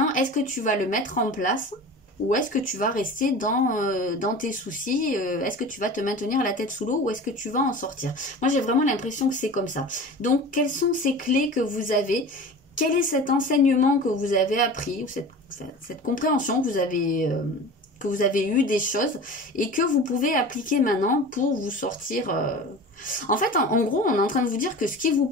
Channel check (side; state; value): both; normal; correlation 0.36